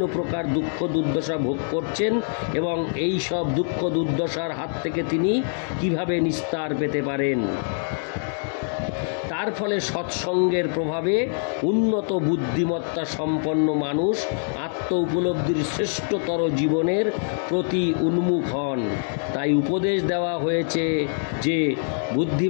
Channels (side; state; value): right; silent; digital silence